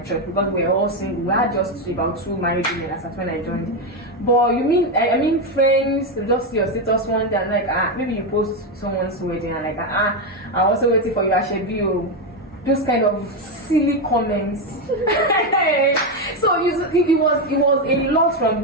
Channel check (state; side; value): normal; both; correlation 0.08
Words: church because we were all single. We had just about 2 married women as at when I joined. But you mean I mean friends, just your status one day and like maybe you post someone's wedding and like I'm also waiting for you at Shebio. Those kind of silly comments. So it was a lot from